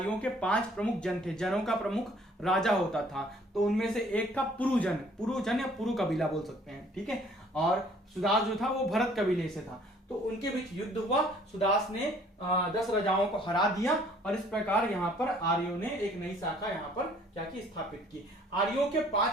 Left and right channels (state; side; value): normal; both; correlation 0.58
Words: के 5 प्रमुख जन थे, जनों का प्रमुख राजा होता था। तो उनमें से एक था पुरुजन या पुरु कबीला बोल सकते हैं। ठीक है, और सुदास जो था वो भरत कबीले से था। तो उनके बीच युद्ध हुआ, सुदास ने 10 राजाओं को हरा दिया और इस प्रकार यहाँ पर आर्यों ने एक नई शाखा यहाँ पर क्या की, स्थापित की। आर्यों के